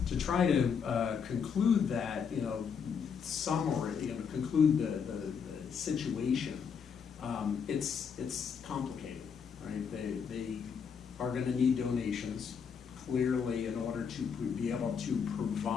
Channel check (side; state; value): right; quieter; 6.6 dB